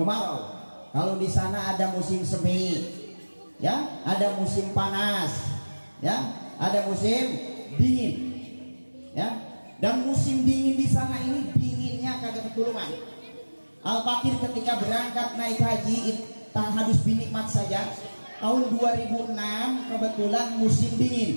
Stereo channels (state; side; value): inverted; both; correlation -1.00